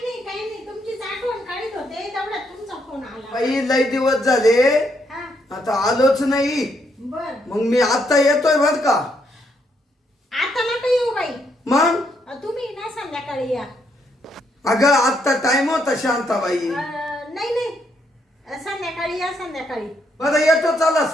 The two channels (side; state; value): both; normal; correlation 0.75